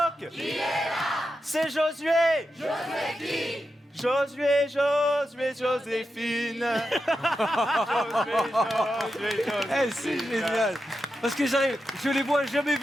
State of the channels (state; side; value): normal; both; correlation 0.88